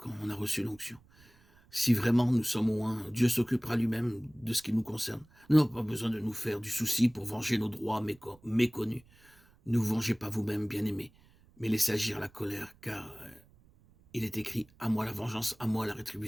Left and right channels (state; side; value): noise; right; rumble, 29 dB below the sound